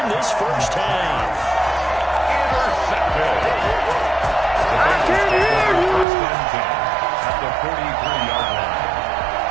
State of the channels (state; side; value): drops out; left; at 6.1 s